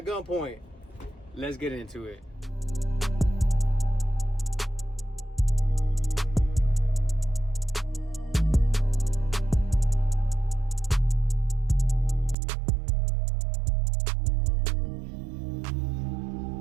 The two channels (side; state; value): left; drops out; at 12.4 s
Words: gunpoint. Let's get into it.